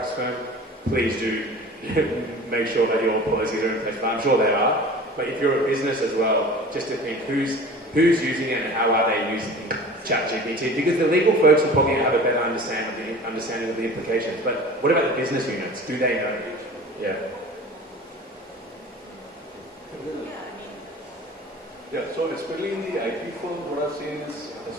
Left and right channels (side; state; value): both; normal; correlation 0.40